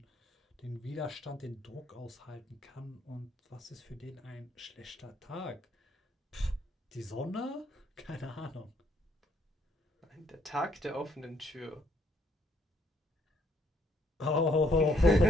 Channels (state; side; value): normal; both; correlation 0.69